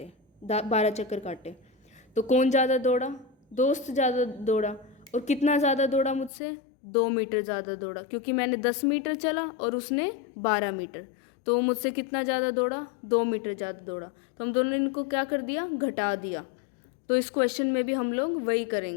12 चक्कर काटे, तो कौन ज़्यादा दौड़ा, दोस्त ज़्यादा दौड़ा। और कितना ज़्यादा दौड़ा मुझसे, 2 मीटर ज़्यादा दौड़ा, क्योंकि मैंने 10 मीटर चला और उसने 12 मीटर, तो वो मुझसे कितना ज़्यादा दौड़ा, 2 मीटर ज़्यादा दौड़ा। तो हम दोनों ने इनको क्या कर दिया, घटा दिया। तो इस क्वेश्चन में भी हम लोग वही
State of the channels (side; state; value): right; drops out; at 6.3 s